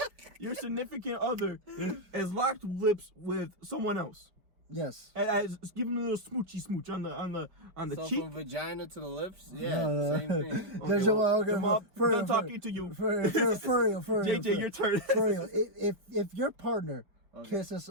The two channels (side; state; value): left; late; 5.0 ms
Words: Your significant other has locked lips with someone else. Yes. As giving a little smoochy smooch on the so cheek. From vagina to the lips. Yeah, same thing. Okay, done talking to you. For real. JJ, your turn. For real. If your partner kisses